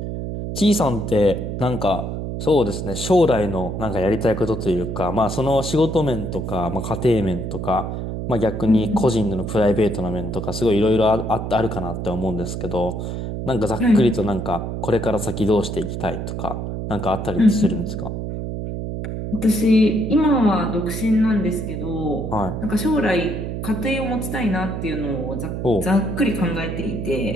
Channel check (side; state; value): right; noise; hum, 5 dB below the sound